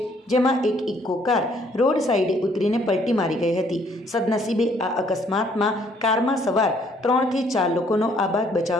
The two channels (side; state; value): both; normal; correlation 0.64